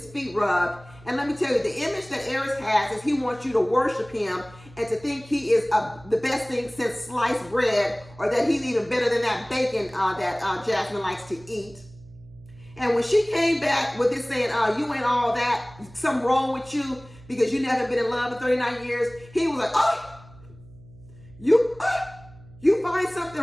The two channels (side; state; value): right; noise; hum, 22 dB below the sound